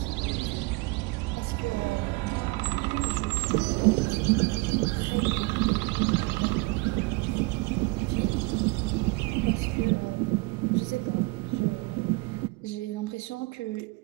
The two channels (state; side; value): quieter; left; 25.8 dB